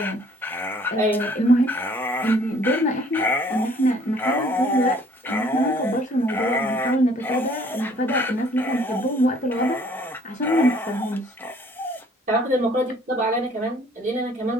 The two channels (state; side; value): normal; both; correlation 0.58